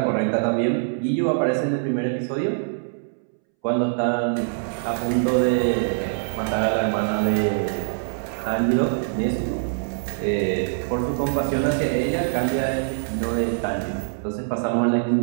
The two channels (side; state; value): left; silent; 63 dB below the other